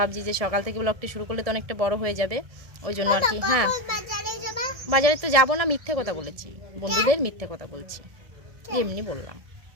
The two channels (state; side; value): late; left; 1.6 ms